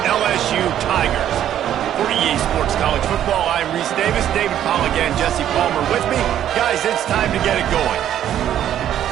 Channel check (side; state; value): left; quieter; 10.9 dB